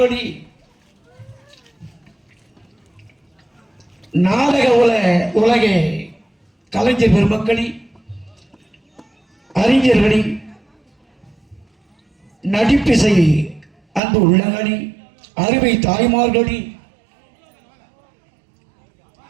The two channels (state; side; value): drops out; left; at 14.0 s